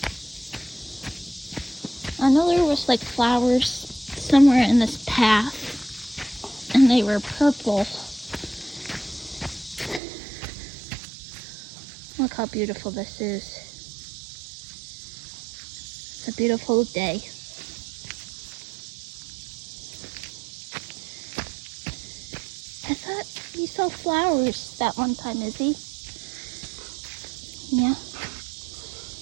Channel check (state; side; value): drops out; left; at 10.0 s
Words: I know there was like flowers somewhere in this path, and they were purple. Look how beautiful this is. It's a beautiful day. I thought we saw flowers that one time, Izzy. Yeah.